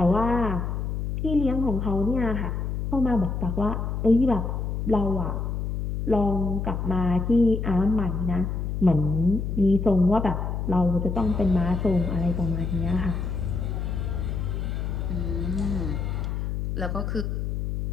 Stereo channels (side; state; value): left; noise; hum, 2 dB below the sound